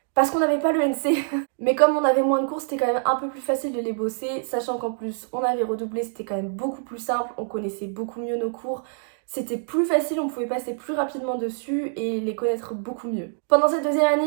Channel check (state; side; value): silent; left; digital silence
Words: parce qu'on n'avait pas le NC. Mais comme on avait moins de cours, c'était quand même un peu plus facile de les bosser, sachant qu'en plus on avait redoublé, c'était quand même beaucoup plus simple, on connaissait beaucoup mieux nos cours. C'était plus facile, on pouvait passer plus rapidement dessus et les connaître beaucoup mieux. Pendant cette deuxième